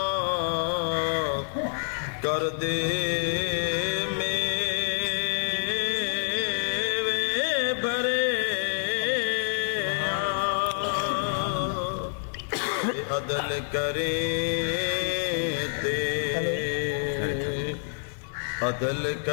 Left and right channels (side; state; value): right; silent; digital silence